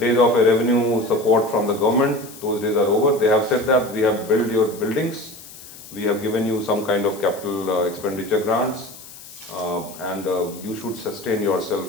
of a revenue support from the government, those days are over. They have said that we have built your buildings, we have given you some kind of capital expenditure grants, and you should sustain yourself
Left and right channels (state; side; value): noise; left; hiss, 17 dB below the sound